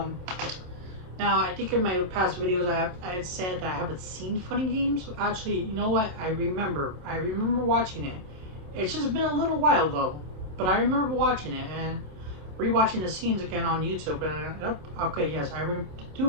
I think in my past videos I had said that I haven't seen Funny Games. Actually, you know what? I remember watching it. It's just been a little while though. But I remember watching it and rewatching the scenes again on YouTube. And okay, yes,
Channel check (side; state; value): left; late; 27 ms